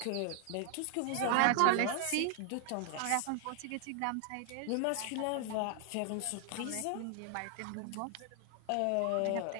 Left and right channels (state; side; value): different; both; correlation 0.00